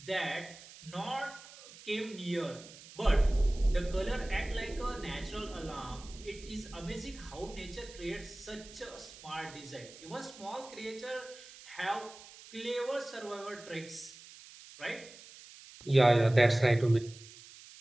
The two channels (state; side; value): noise; right; hiss, 18 dB below the sound